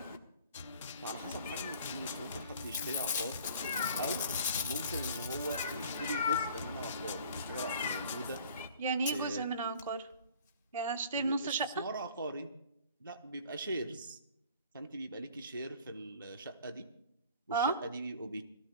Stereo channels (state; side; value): inverted; both; correlation -0.49